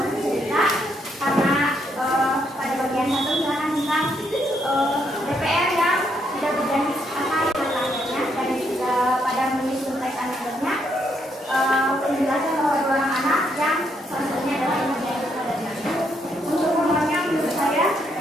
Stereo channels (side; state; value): both; normal; correlation 0.75